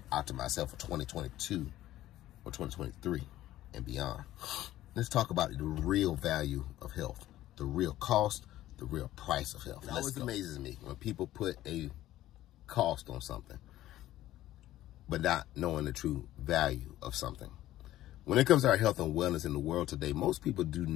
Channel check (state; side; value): quieter; right; 14.4 dB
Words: out to myself for 2022 or 2023 and beyond. Let's talk about the real value of health, the real cost, the real price of health. It always amazes me when people put a cost on something, but not knowing the true value of something. When it comes to our health and wellness in the world today, most people do